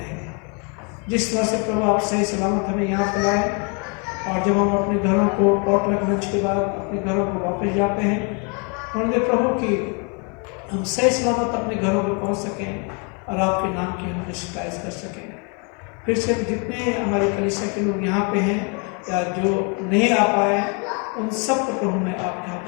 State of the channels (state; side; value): quieter; right; 35.5 dB